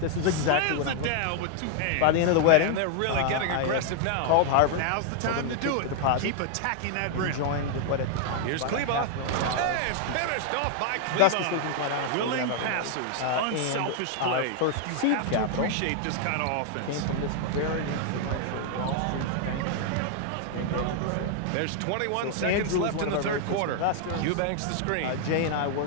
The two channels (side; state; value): both; different; correlation 0.00